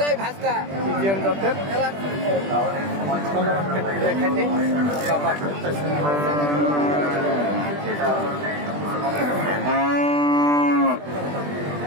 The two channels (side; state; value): left; late; 20 ms